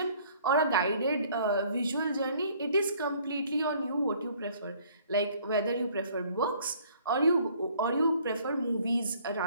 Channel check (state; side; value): inverted; both; correlation -0.58